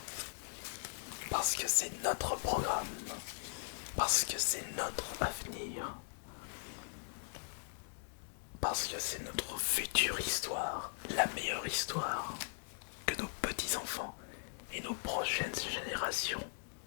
Parce que c'est notre programme. Parce que c'est notre avenir. Parce que c'est notre future histoire, la meilleure histoire que nos petits-enfants et nos prochaines générations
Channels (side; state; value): right; silent; digital silence